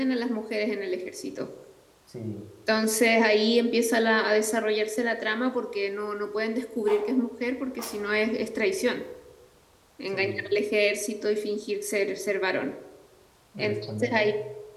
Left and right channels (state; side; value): identical; both; correlation 1.00